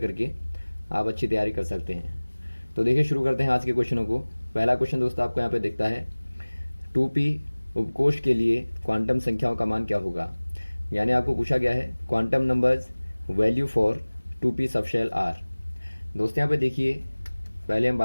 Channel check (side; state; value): both; inverted; correlation -1.00